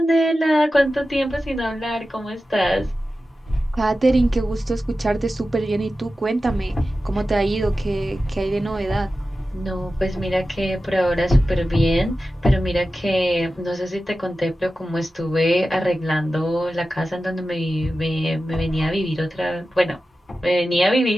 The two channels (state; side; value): normal; both; correlation 0.93